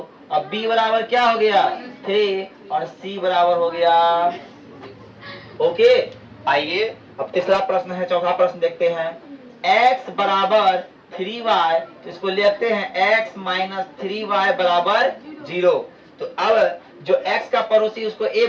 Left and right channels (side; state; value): both; identical; correlation 1.00